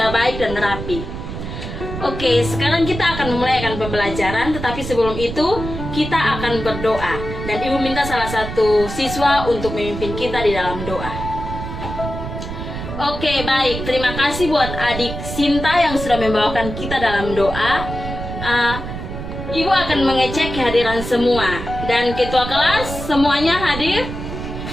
baik dan rapi. Oke, sekarang kita akan memulai pembelajaran, tetapi sebelum itu kita akan berdoa. Dan Ibu minta salah satu siswa untuk memimpin kita di dalam doa. Oke, baik. Terima kasih buat adik Sinta yang sudah membawakan kita dalam doa. Ibu akan mengecek kehadiran semua. Dan ketua kelas semuanya hadir?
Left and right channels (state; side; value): noise; right; rumble, 7 dB below the sound